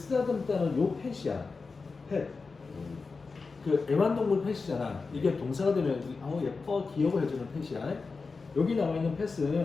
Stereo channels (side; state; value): right; quieter; 4.4 dB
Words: 요 펫이야. 펫. 그 애완동물 펫이잖아. 이게 동사가 되면 예뻐, 귀여워 해주는 펫이야. 여기 나와 있는